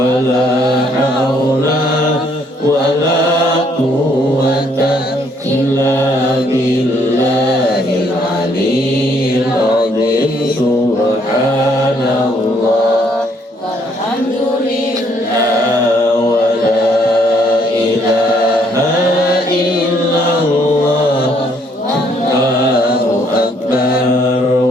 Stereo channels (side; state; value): both; normal; correlation 0.67